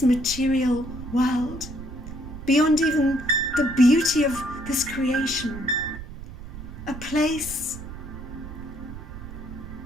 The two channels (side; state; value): right; noise; rumble, 12 dB below the sound